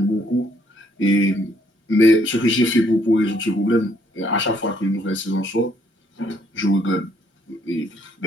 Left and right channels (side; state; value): both; normal; correlation 0.68